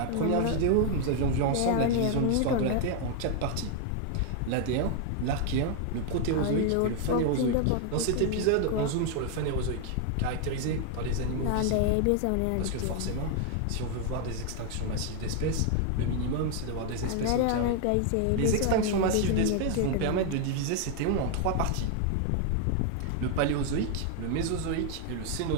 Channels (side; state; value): both; different; correlation 0.00